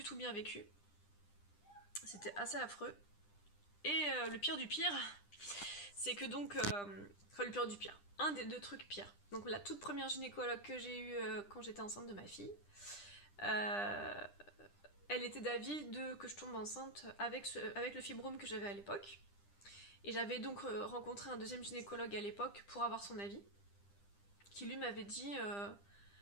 tout bien vécu. C'était assez affreux. Et le pire du pire, c'est que donc... le pire du pire. Un des deux trucs pires. Donc la toute première gynécologue que j'ai eue quand j'étais enceinte de ma fille, elle était d'avis que je tombe enceinte avec le fibrome que j'avais à l'époque. Et j'avais donc rencontré un deuxième gynécologue à l'époque pour avoir son avis, qui lui m'avait dit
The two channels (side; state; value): right; late; 10 ms